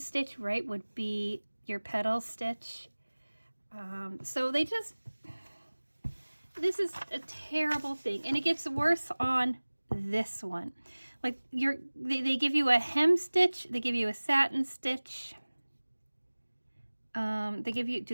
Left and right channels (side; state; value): both; inverted; correlation -1.00